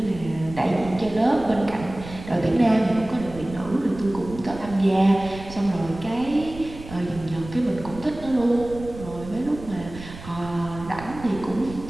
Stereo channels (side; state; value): right; noise; rumble, 14 dB below the sound